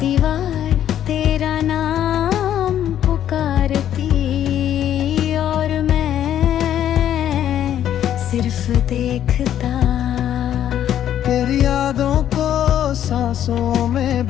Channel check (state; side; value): quieter; right; 10.7 dB